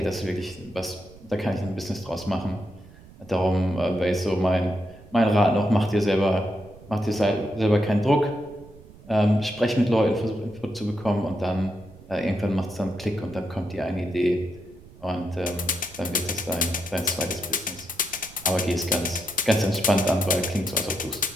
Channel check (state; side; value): noise; right; rumble, 21 dB below the sound